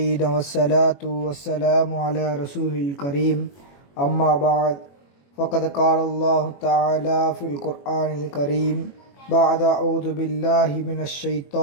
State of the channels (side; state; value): right; late; 21 ms